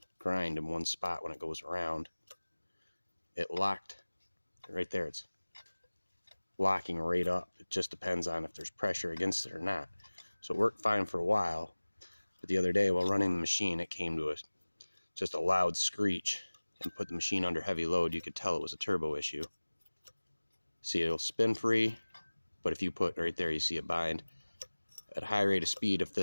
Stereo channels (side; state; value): both; inverted; correlation -1.00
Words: grind in one spot when it goes around. It locked right there. It's locking right up. It just depends on if there's pressure against it or not. So it worked fine for a while, but the other day while running the machine, it came to just a loud screech and put the machine under heavy load. You could tell it was a turbo issue. See, it'll spin free, but if you put right there, you see it bind. At a high rate of speed, if